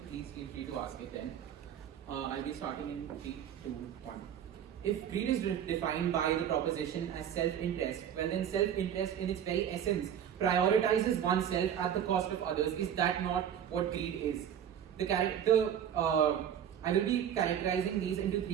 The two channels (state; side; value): quieter; left; 9.3 dB